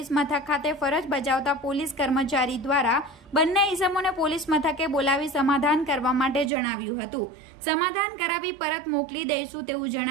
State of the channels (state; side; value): drops out; left; at 6.5 s